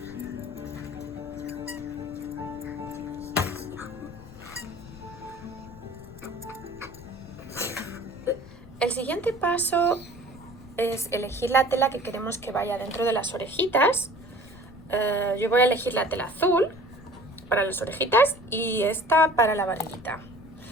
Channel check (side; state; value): left; noise; rumble, 20 dB below the sound